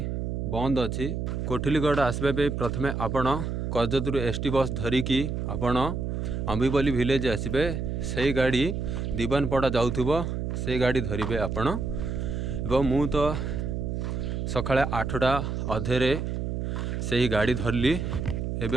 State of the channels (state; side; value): noise; right; hum, 2 dB below the sound